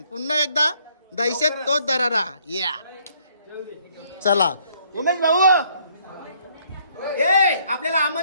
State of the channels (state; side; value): inverted; both; correlation -0.66